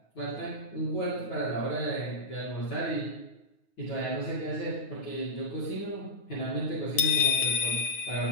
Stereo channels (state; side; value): late; right; 9.4 ms